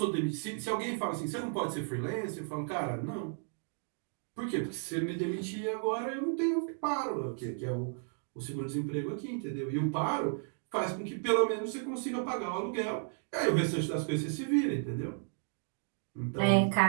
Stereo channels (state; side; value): silent; left; 55 dB below the other